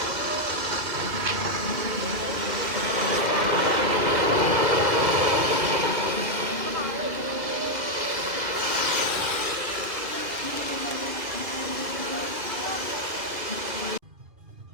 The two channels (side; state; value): left; late; 2.7 ms